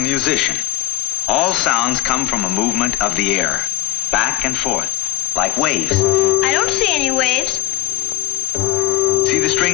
All sounds come from a movement of the air, back and forth, like waves. I don't see any waves. See the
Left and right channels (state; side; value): quieter; right; 18.0 dB